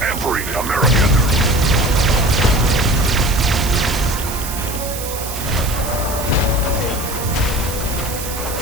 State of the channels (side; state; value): right; noise; hiss, 8 dB below the sound